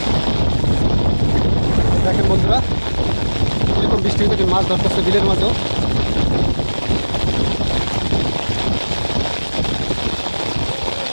দেখেন বন্ধুরা এরকম বৃষ্টি থেকে মাছ ধরতেছে বিলের মাঝেও।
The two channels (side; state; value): both; inverted; correlation -1.00